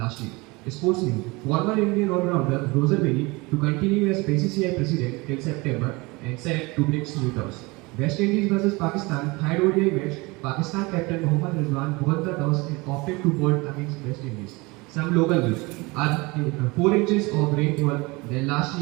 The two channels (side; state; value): left; quieter; 24.6 dB